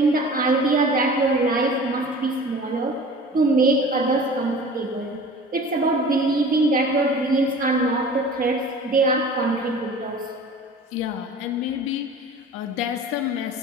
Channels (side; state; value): both; normal; correlation 0.41